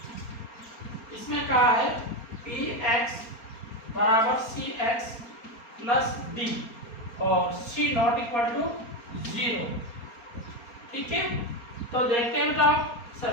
इसमें कहा है px बराबर cx प्लस d और c नॉट इक्वल टू 0। ठीक है, तो देखते हैं बेटा,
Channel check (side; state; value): right; late; 4.3 ms